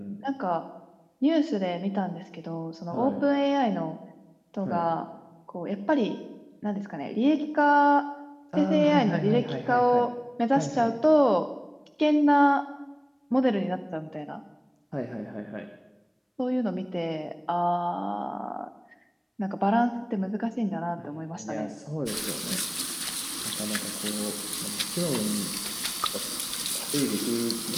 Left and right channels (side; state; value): both; identical; correlation 1.00